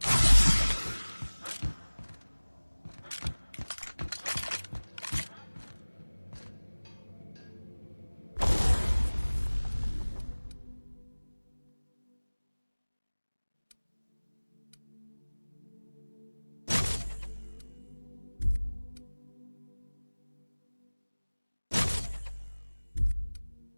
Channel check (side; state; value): both; inverted; correlation -1.00